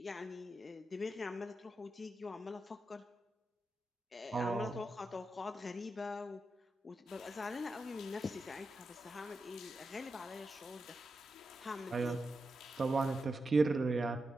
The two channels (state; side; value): normal; both; correlation 0.88